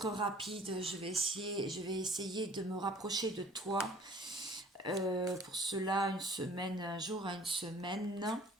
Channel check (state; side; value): normal; both; correlation 0.51